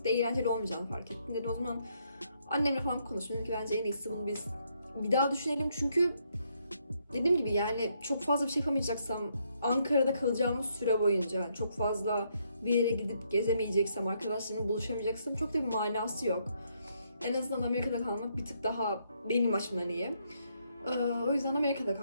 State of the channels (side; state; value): both; inverted; correlation -0.74